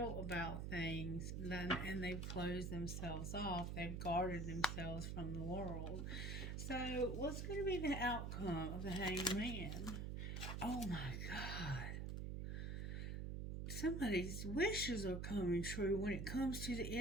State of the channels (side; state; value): right; noise; hum, 3 dB below the sound